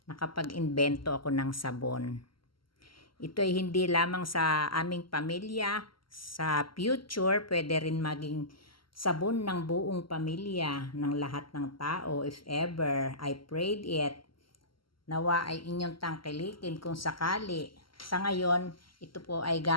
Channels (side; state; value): right; late; 0.73 ms